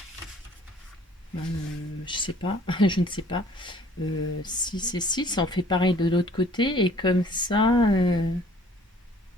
sais pas, je ne sais pas. 6 et 6, on fait pareil de l'autre côté. Et comme ça...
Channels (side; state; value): both; normal; correlation 0.55